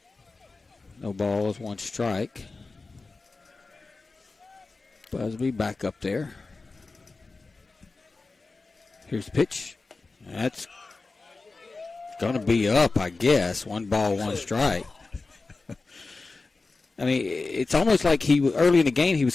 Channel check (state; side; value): quieter; right; 3.7 dB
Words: No balls, 1 strike. Busby back up there. Here's the pitch. That's Going to be up, I guess. 1 ball, 1 strike. I mean, it's almost like early in the game he was